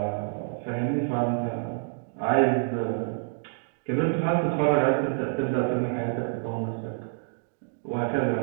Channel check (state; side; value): silent; left; 57 dB below the other